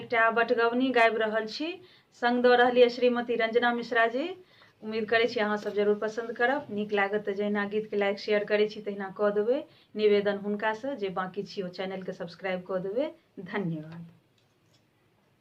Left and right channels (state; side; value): identical; both; correlation 1.00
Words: बटगवनी गाबि रहल छी, संग दऽ रहलिए श्रीमती रंजना मिश्रा जी। उम्मीद करै छी अहाँ सब जरूर पसंद करब। नीक लागत तऽ जहिना गीत के लाइक शेयर करै छी तहिना कऽ देबै। निवेदन हुनका से जे बाकी छी ओ चैनल के सब्सक्राइब कऽ देबै। धन्यवाद।